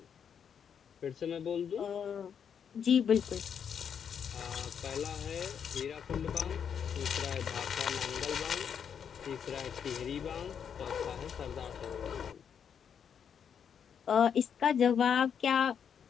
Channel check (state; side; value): quieter; right; 7.6 dB